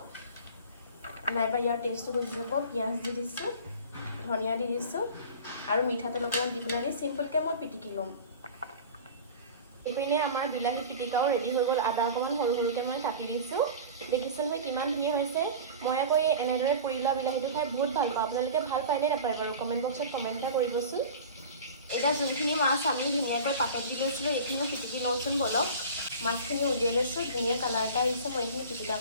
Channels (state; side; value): inverted; both; correlation -0.36